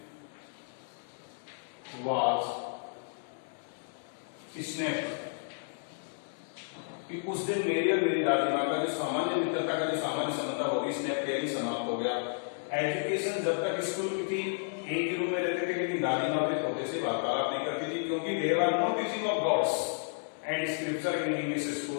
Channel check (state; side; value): silent; right; digital silence